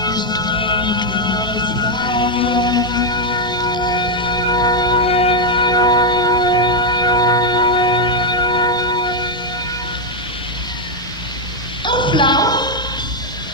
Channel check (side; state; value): both; normal; correlation 0.02